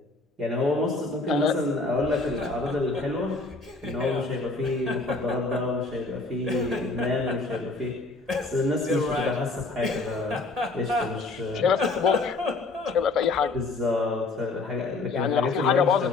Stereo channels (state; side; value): quieter; right; 3.6 dB